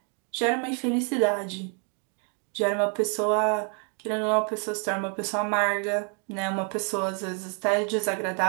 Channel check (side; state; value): left; quieter; 37.6 dB